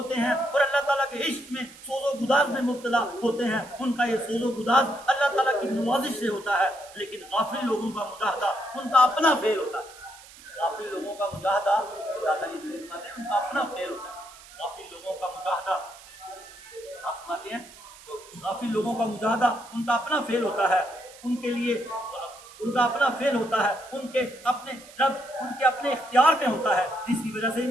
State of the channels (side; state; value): right; noise; hiss, 20 dB below the sound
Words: ہیں اور اللہ تعالیٰ کے عشق میں سوز و گداز میں مبتلا ہوتے ہیں، ان کا یہ سوز و گداز اللہ تعالیٰ کی نوازش سے ہوتا ہے۔ لیکن غافل لوگوں کا مجاہدہ ان کا اپنا فعل ہوتا ہے، غافل لوگوں کا مجاہدہ اللہ تعالیٰ فرماتے ہیں ان کا اپنا فعل ہوتا ہے۔ غافل لوگوں کا مجاہدہ آپ فرماتے ہیں غافل لوگوں کا مجاہدہ ان کا اپنا فعل ہوتا ہے، ان کے لیے ان کا اپنا فعل ہوتا ہے، ان کے اپنے رب ان کے اپنے اختیار میں ہوتا ہے، جس کی وجہ سے